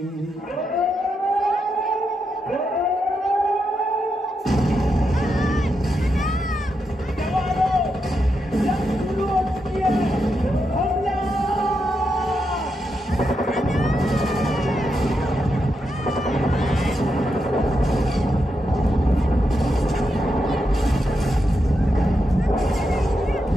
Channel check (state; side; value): normal; both; correlation 0.84